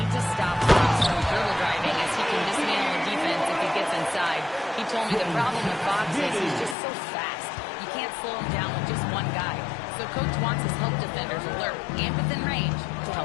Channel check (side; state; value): right; drops out; at 6.8 s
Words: to stop Fox from dribble driving as he can dismantle the defense if he gets inside. He told me the problem with Fox is he's just so fast. You can't slow him down with just one guy. So coach wants his help defenders alert and within range to